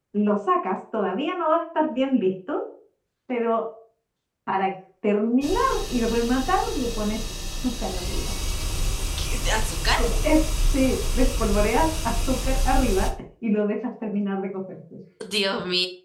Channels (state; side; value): identical; both; correlation 1.00